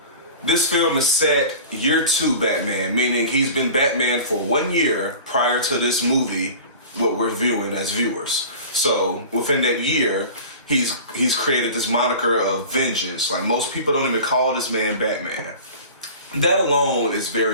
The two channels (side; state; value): both; inverted; correlation -0.38